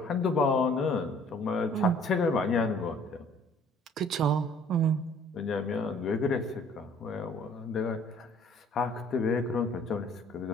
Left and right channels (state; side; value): normal; both; correlation 0.56